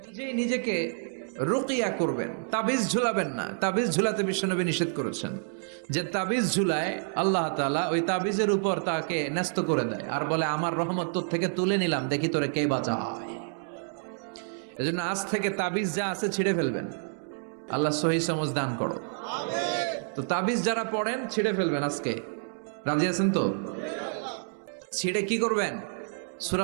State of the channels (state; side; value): silent; left; 59 dB below the other